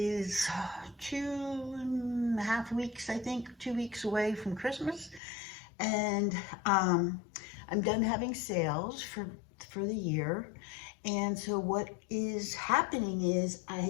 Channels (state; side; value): drops out; right; at 5.2 s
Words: 2.5 weeks, I think, 2 weeks away from Christmas, and I'm done having sales for the year. And so what is happening is